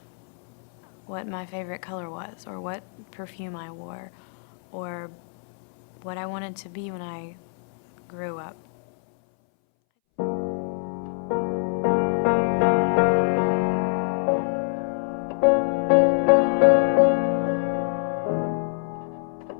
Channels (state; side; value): silent; right; 62 dB below the other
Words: what my favorite color was or what perfume I wore or what I wanted to be when I grew up.